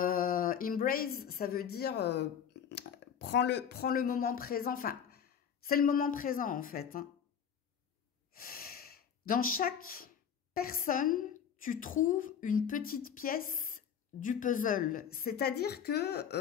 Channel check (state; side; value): quieter; right; 8.0 dB